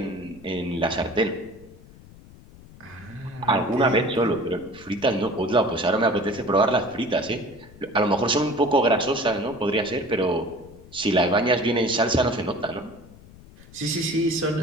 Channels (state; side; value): noise; left; rumble, 21 dB below the sound